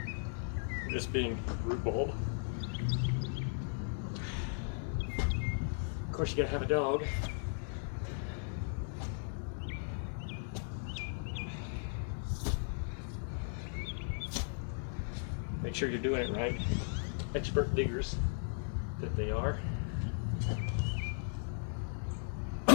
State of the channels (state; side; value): silent; right; 53 dB below the other